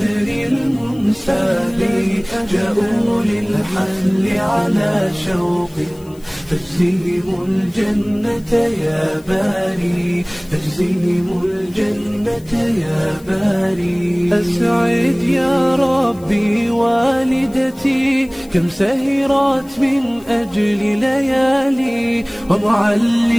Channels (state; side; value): noise; left; hiss, 26 dB below the sound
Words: المنساب جاءوا للحفل على شوق فاجزهم الجنة يا باري فاجزهم الجنة يا باري أسعد يا ربي والدتي كم سهرت من أجل ليالي